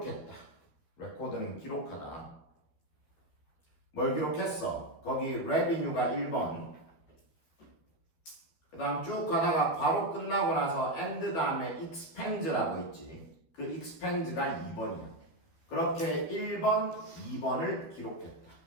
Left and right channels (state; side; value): late; right; 12 ms